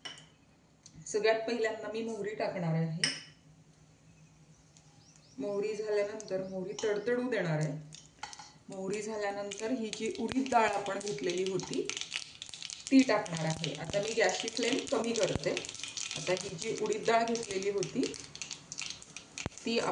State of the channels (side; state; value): both; identical; correlation 1.00